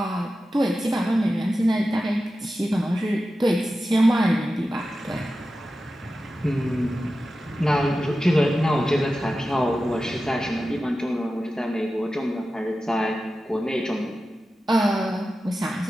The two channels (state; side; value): normal; both; correlation 0.93